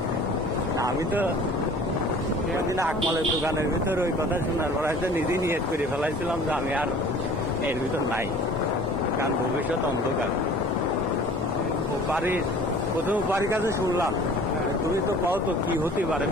আমি তো সেদিন আকমালের দোকানের ভিতর ওই কথা শোনার পর হয়তো নিজেই নিয়ত করে ফেলাইছিলাম যে আমি আর এর ভিতর নাই, কারণ ভবিষ্যৎ অন্ধকার। ও বাড়ির প্রথম বাড়ির কাছে শুনলাম তুমি তো পাও তো কি হতে পারে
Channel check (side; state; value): both; normal; correlation 0.47